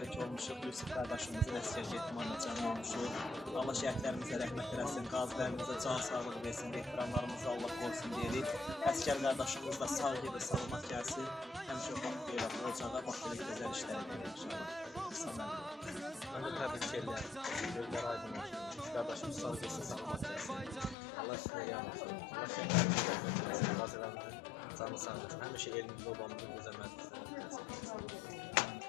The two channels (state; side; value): drops out; right; at 21.0 s